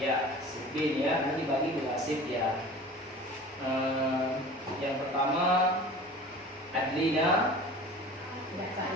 sip B ya, nanti bagi dua sip ya. Yang pertama Adlina.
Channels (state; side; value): normal; both; correlation 0.41